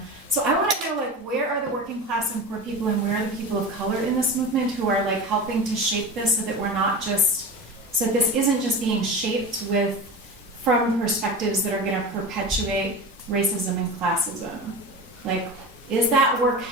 So I want to know, like, where are the working class and poor people, and where are the people of color in this movement who are like helping to shape this, so that we're not just, so that this isn't just being shaped from perspectives that are going to perpetuate racism and classism. Like, is that work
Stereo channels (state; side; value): normal; both; correlation 0.30